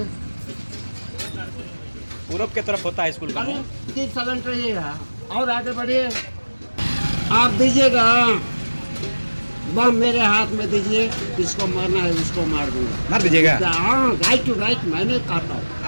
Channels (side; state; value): both; inverted; correlation -1.00